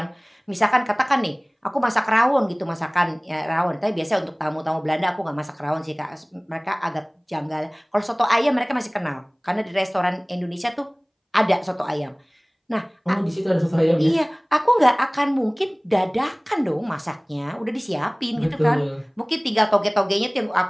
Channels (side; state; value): both; identical; correlation 1.00